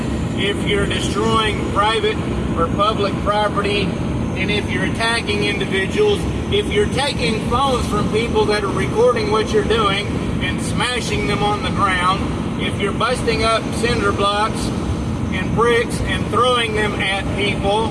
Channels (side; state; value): both; identical; correlation 1.00